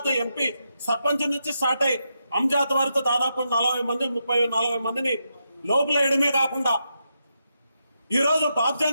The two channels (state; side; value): inverted; both; correlation -0.84